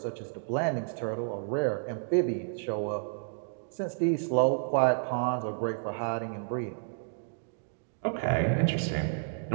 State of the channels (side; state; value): left; silent; digital silence